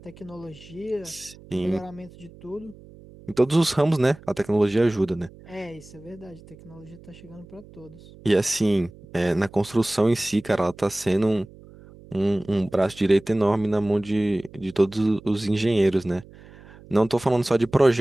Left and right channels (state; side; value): noise; right; hum, 21 dB below the sound